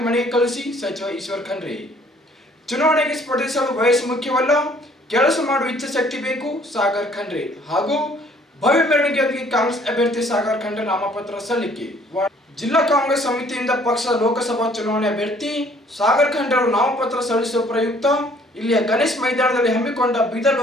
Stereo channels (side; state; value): both; normal; correlation 0.59